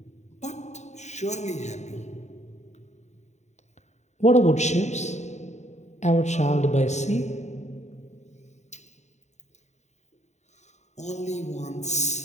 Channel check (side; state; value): right; late; 0.33 ms